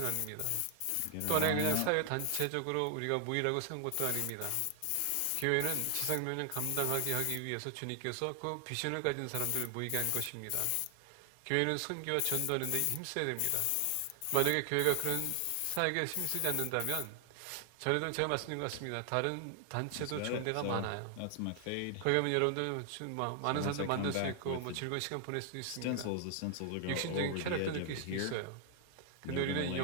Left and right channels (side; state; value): both; different; correlation 0.00